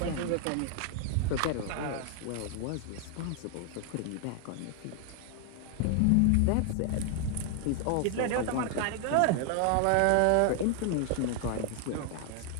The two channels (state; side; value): different; both; correlation 0.00